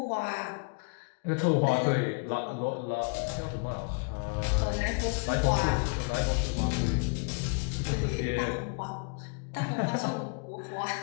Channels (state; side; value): quieter; right; 35.9 dB